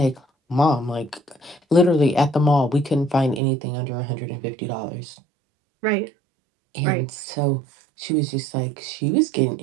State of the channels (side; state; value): left; drops out; at 3.4 s